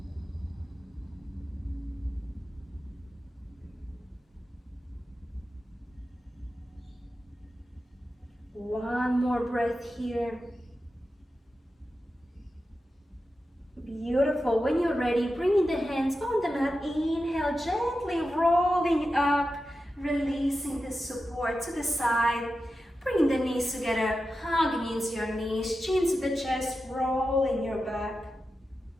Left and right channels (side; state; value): both; normal; correlation 0.91